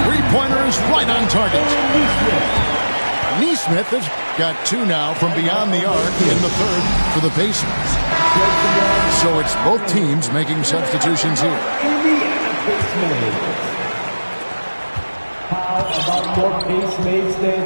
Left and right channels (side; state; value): both; inverted; correlation -1.00